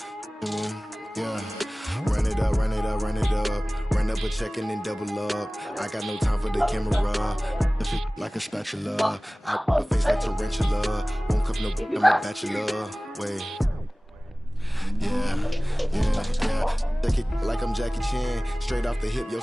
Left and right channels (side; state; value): both; normal; correlation 0.98